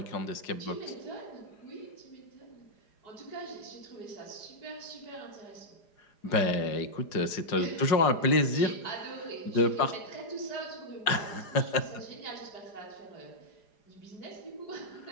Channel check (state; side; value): late; right; 4.9 ms